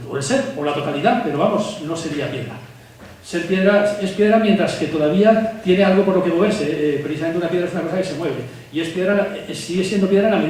O el ser, o la totalidad, pero vamos, no sería piedra. Ser piedra es piedra mientras que todavía tiene algo por lo que moverse. Precisamente una piedra es una cosa que se mueve. Y es piedra, sigue siendo piedra en la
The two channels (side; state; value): both; identical; correlation 1.00